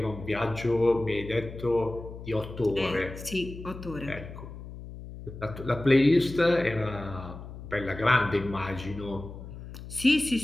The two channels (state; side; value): noise; left; hum, 12 dB below the sound